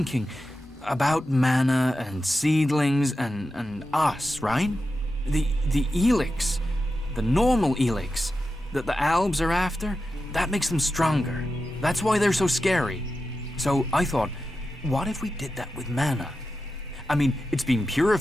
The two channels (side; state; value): both; normal; correlation 0.91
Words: about mana and seedlings and us, right? The Elex, the normal Elex that the Albs are after, that makes them stronger. That's why they're so scary. So I thought, what if we did that with mana? I mean, it's been